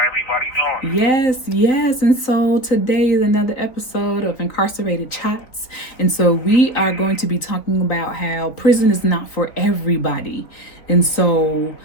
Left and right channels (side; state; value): right; late; 3.6 ms